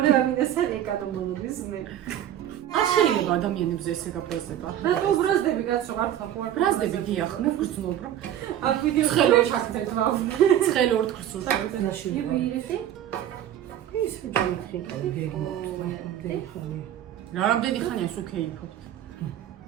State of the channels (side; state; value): left; quieter; 11.2 dB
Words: მინასთან ეკანომოლობის მე. არ შეიძლება ადამიანებს ესე გაბრაზდება. რატო ბრაზდები კაცო მართლა ხო არ ბრაზდები გიახ, მე ვგრძნობ რომ აქ ვიდეო ცხელო ჩაგდეთ ვაუ. ცხელი ორ თხრს უშავდაში. ივირეთი? ის ვიჯამე რა რამდენი ხანია სულ კეიფობთ?